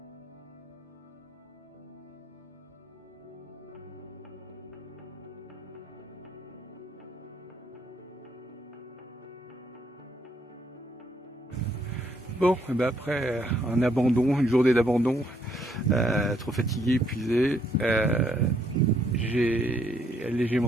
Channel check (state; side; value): normal; both; correlation 0.71